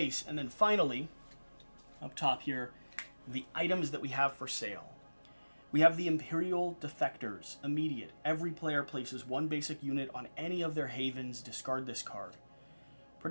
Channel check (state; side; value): inverted; both; correlation -1.00